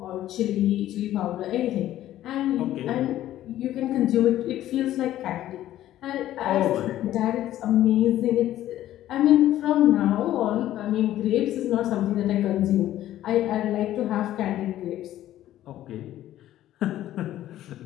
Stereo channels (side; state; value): right; quieter; 13.2 dB